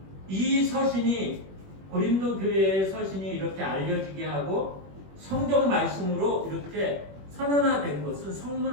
이 서신이 고린도 교회의 서신이 이렇게 알려지게 하고 성경 말씀으로 이렇게 선언화된 것은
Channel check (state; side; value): late; left; 21 ms